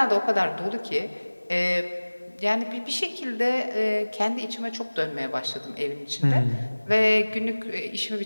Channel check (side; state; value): both; inverted; correlation -1.00